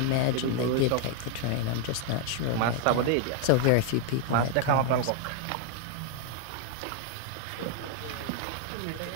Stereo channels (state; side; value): different; both; correlation 0.00